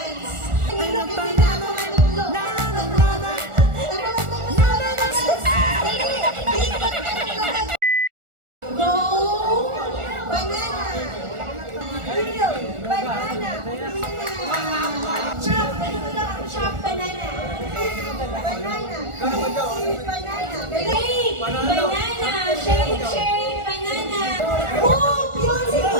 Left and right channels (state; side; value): late; left; 1.4 ms